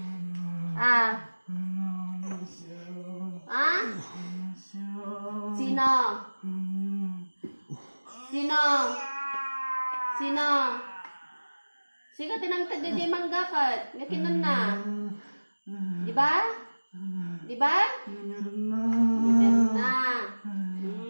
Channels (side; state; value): both; inverted; correlation -1.00